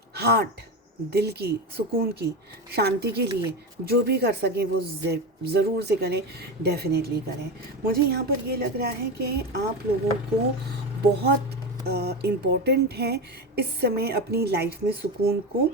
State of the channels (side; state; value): both; normal; correlation 0.20